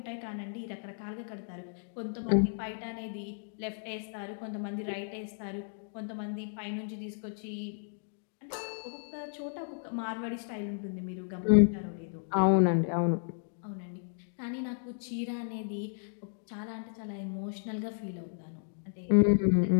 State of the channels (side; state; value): right; silent; digital silence